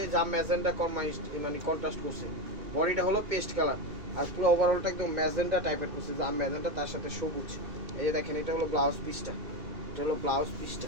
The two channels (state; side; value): late; left; 2.2 ms